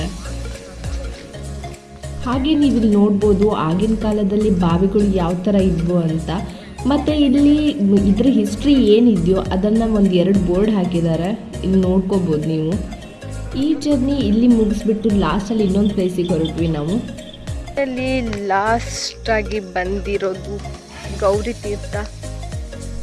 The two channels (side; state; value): both; identical; correlation 1.00